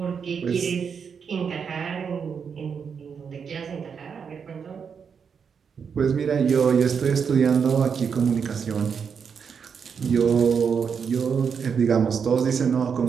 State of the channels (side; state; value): left; quieter; 6.5 dB